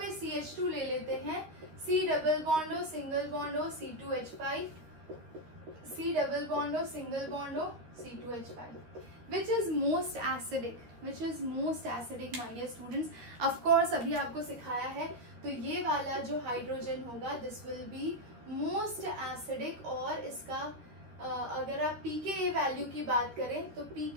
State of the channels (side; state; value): left; late; 13 ms